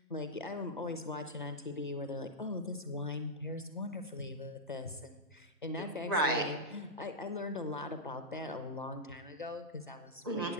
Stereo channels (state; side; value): normal; both; correlation -0.06